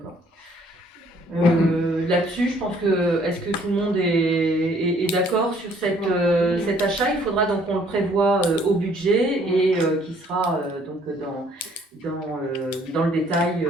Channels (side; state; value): both; normal; correlation 0.61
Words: Là-dessus, je pense que, est-ce que tout le monde est d'accord sur cet achat? Il faudra donc qu'on le prévoie au budget et qui sera donc dans le détail